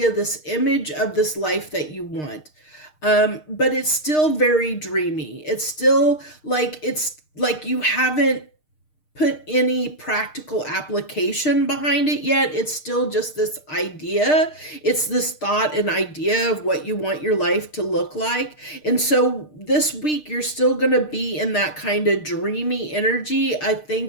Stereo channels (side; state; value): right; late; 6.6 ms